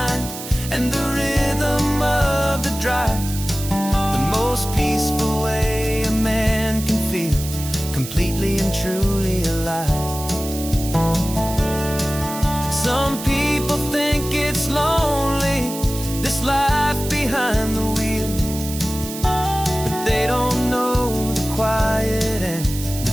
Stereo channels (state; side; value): noise; right; hiss, 10 dB below the sound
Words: and the rhythm of the drive. The most peaceful way a man can feel completely and truly alive. Some people think it's lonely, this life behind the wheel, but they don't know the quiet and